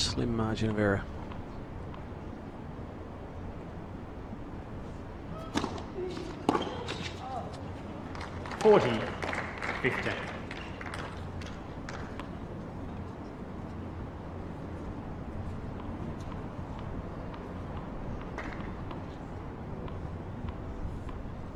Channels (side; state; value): both; identical; correlation 1.00